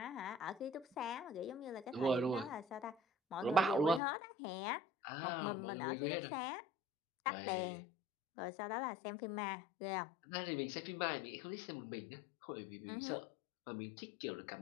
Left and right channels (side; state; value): right; drops out; at 4.0 s